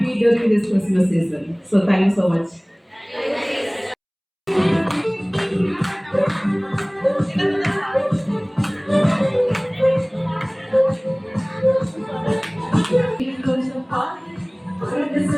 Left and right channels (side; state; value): both; identical; correlation 1.00